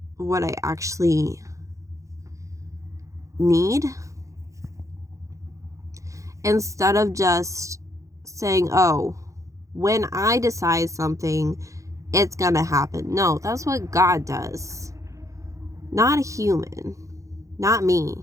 what I actually need, instead of just saying, oh, when I decide something, it's gonna happen. No, that's what God does. Not a human. Not me.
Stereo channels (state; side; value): late; left; 0.15 ms